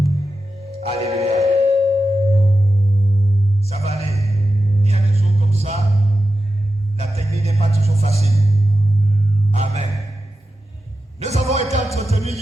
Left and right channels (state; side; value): normal; both; correlation 0.91